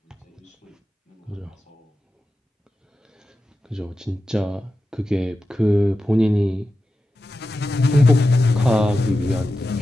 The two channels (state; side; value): normal; both; correlation 0.91